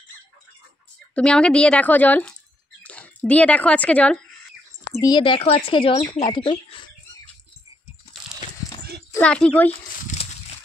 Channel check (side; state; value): both; normal; correlation 0.77